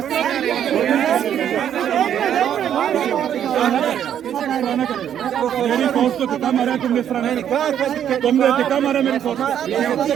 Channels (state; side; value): quieter; left; 9.7 dB